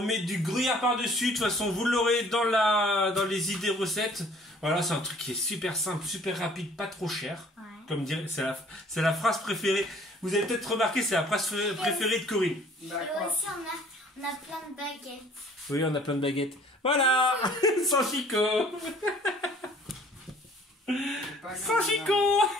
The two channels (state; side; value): normal; both; correlation 0.55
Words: du gruyère par-dessus. De toute façon, vous l'aurez dans les idées recettes. Voilà, c'est un truc qui est super simple, super rapide, pas trop cher. Ouais. Comme dire, c'est la phrase préférée. Vous avez peut-être remarqué, c'est la phrase préférée de Corinne. Et aussi, on a plein de baguettes. Oui, on a plein de baguettes. Voilà. Sans Chico. Sans Chico.